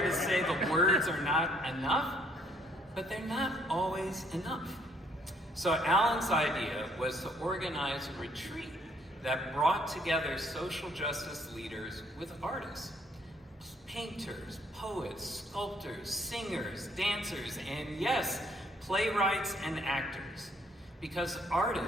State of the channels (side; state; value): both; normal; correlation 0.65